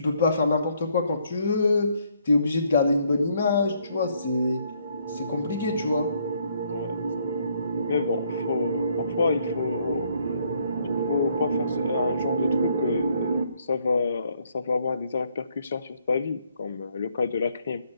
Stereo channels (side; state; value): both; inverted; correlation -0.69